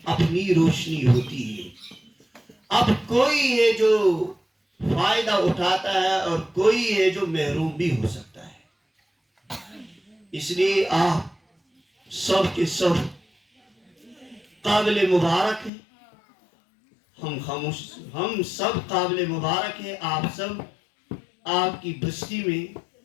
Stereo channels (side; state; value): right; drops out; at 15.7 s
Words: اپنی روشنی ہوتی ہے. اب کوئی ہے جو فائدہ اٹھاتا ہے اور کوئی ہے جو محروم بھی ہو سکتا ہے. اس لیے آپ سب کے سب قابل مبارک ہیں. ہم سب قابل مبارک ہیں. آپ سب، آپ کی بستی میں